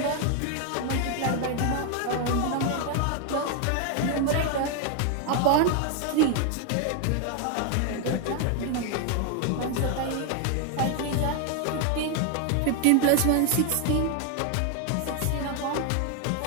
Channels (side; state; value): both; different; correlation 0.01